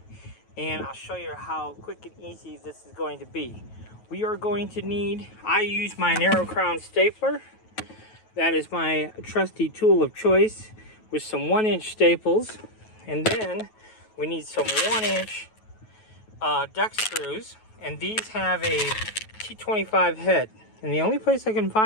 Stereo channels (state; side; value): late; right; 9.3 ms